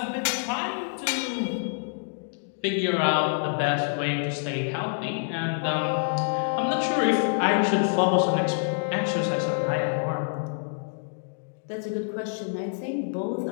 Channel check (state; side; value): silent; right; digital silence